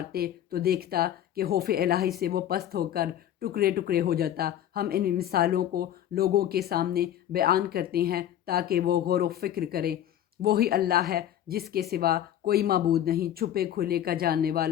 تو دیکھتا کہ خوف الہی سے وہ پست ہو کر ٹکڑے ٹکڑے ہو جاتا۔ ہم ان مثالوں کو لوگوں کے سامنے بیان کرتے ہیں تاکہ وہ غور و فکر کریں۔ وہی اللہ ہے جس کے سوا کوئی معبود نہیں، چھپے کھلے کا جاننے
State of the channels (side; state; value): right; quieter; 11.2 dB